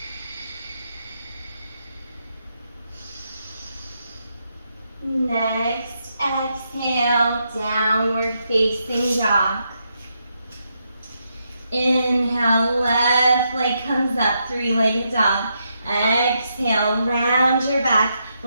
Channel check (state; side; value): inverted; both; correlation -0.81